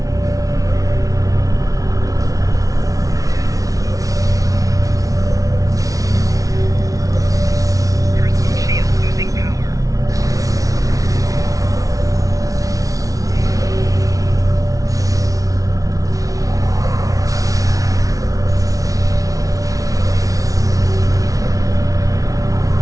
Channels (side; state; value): left; late; 0.17 ms